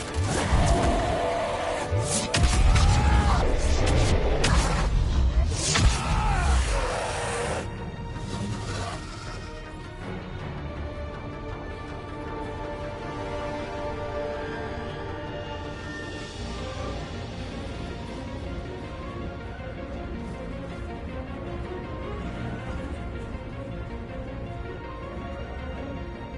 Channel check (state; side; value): identical; both; correlation 1.00